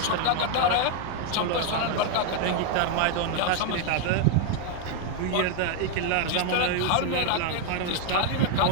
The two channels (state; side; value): different; both; correlation 0.01